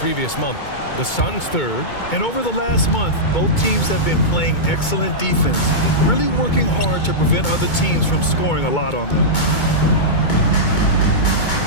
month. The Suns third. And over the last month, both teams have been playing excellent defense, really working hard to prevent other teams from scoring a lot on them.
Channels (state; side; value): late; right; 2.2 ms